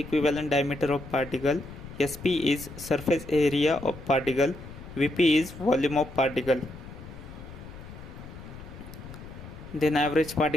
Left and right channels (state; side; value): noise; left; rumble, 14 dB below the sound